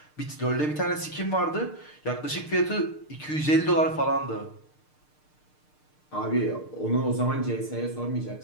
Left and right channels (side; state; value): right; late; 6.6 ms